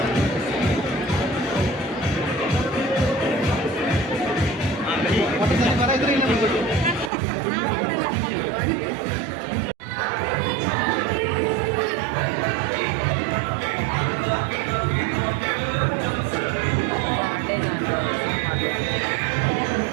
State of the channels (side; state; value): left; drops out; at 7.1 s